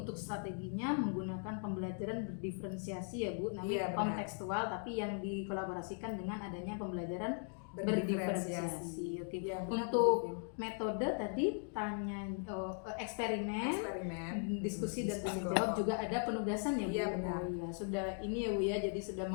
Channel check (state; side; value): silent; right; 52 dB below the other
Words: strateginya menggunakan pembelajaran berdiferensiasi ya Bu, namanya kontekstual, tapi yang dikolaborasikan dengan adanya pembelajaran berdiferensiasi. Oke. Ya, untuk metode tadi eksperimen, diskusi dan tanya jawab, juga ada penugasan ya Bu. Iya, benar. Oh, ya, sudah ini ya Bu ya, jadi sudah